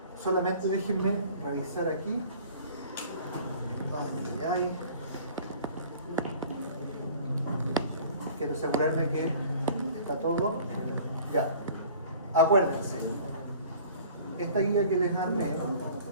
Solamente déjenme revisar aquí. Quiero asegurarme que está todo. Ya. Acuérdense, esta guía que les armé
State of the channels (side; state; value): both; inverted; correlation -0.47